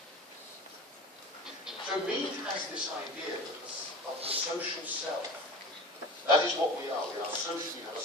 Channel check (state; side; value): normal; both; correlation 0.35